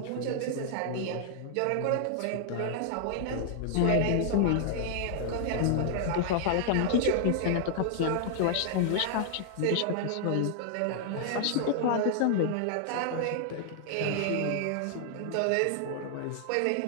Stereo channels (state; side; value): different; both; correlation 0.00